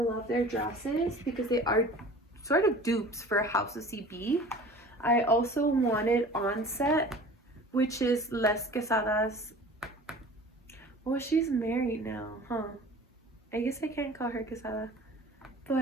their dresses, because they are sort of dupes for House of CB. I also wanted Onset, which is Les Quesada's. Well, she's married now, huh? I guess I can't call her Quesada,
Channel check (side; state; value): both; normal; correlation 0.43